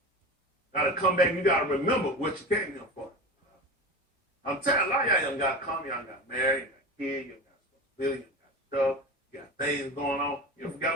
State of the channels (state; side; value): normal; both; correlation 0.28